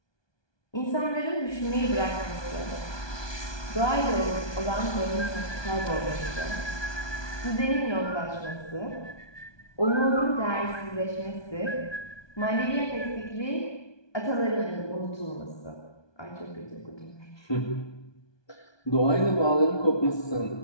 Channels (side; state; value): right; late; 1.2 ms